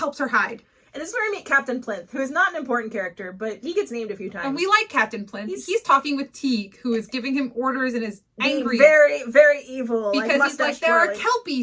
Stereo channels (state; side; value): identical; both; correlation 1.00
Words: hide. And this is where we meet Captain Plinth, who is not an important character, but he gets named a few times. And we like Captain Plinth. He's talking with Teague, who is giving him orders and is angry. Very, very evil. Because he's like, there are